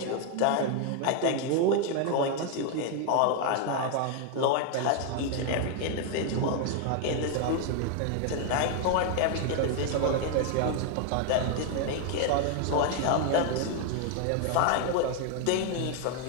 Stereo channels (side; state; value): both; different; correlation 0.00